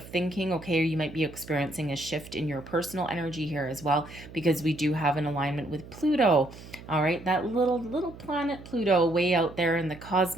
thinking. Okay, or you might be experiencing a shift in your personal energy here as well, because we do have an alignment with Pluto. All right, that little planet Pluto way out there in the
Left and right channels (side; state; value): right; noise; hum, 17 dB below the sound